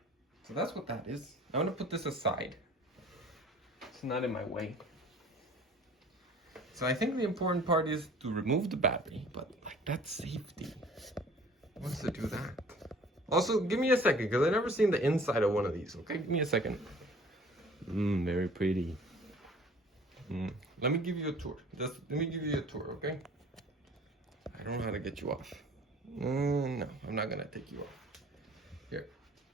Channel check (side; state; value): both; normal; correlation 0.50